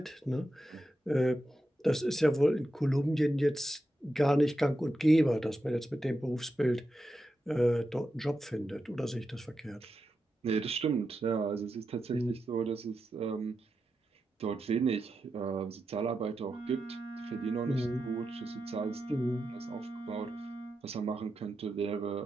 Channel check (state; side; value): normal; both; correlation 0.88